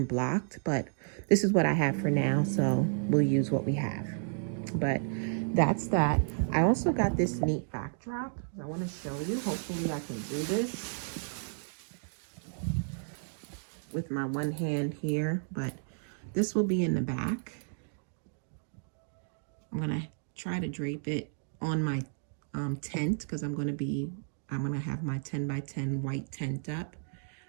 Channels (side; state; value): left; silent; digital silence